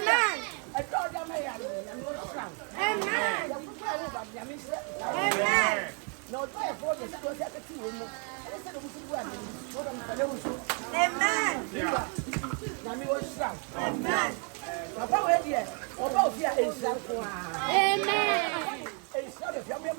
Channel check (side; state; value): left; quieter; 38.9 dB